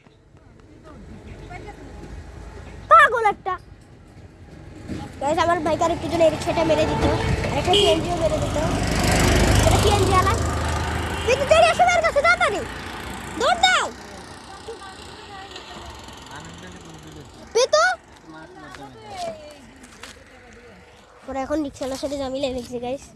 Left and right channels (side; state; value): both; identical; correlation 1.00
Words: পাগল একটা। একটু জন্য এই রিক্সাটা মেরে দিত, আর একটা সিএনজিও মেরে দিত। এটা সিএনজি আলা, কিন্তু তেরি এসে মেরে কাছে তাড়াতাড়ি দৌড় দাও পেতো। ওরা এখন রিক্সাওয়ালার সাথে জামিলে রেখেছে গাইস,